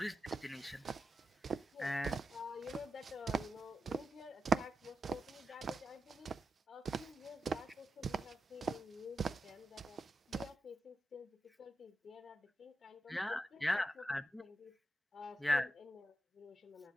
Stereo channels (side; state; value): both; normal; correlation 0.89